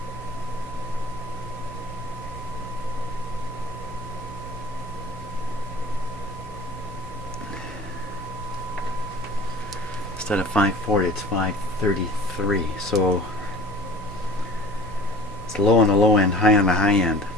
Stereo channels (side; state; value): both; normal; correlation 0.43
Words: Instead of 540, it's 533. So it's low on the low end, high on the high end.